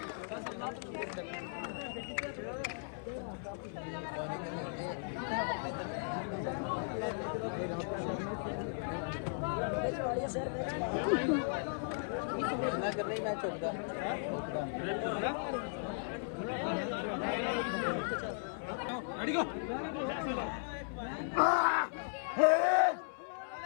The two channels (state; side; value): silent; right; 53 dB below the other